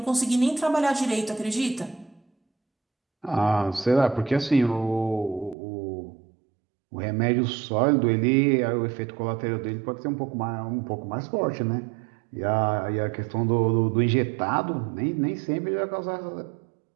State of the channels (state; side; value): drops out; left; at 5.6 s